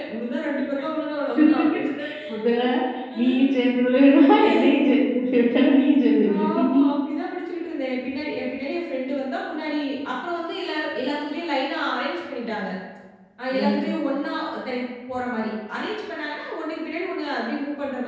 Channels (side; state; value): both; identical; correlation 1.00